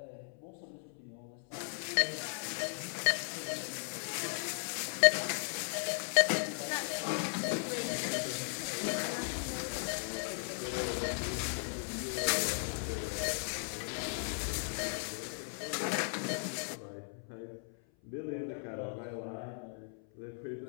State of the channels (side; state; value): right; silent; 53 dB below the other